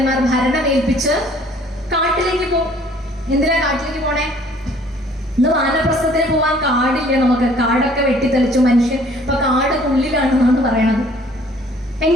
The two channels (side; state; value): both; normal; correlation 0.56